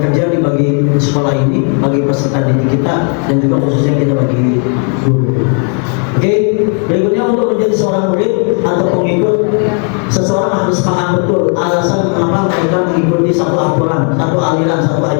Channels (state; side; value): quieter; right; 39.4 dB